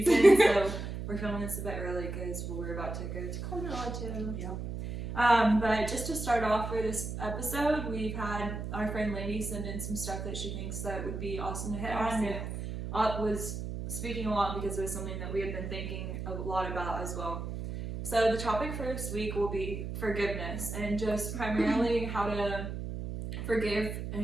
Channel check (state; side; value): noise; right; hum, 5 dB below the sound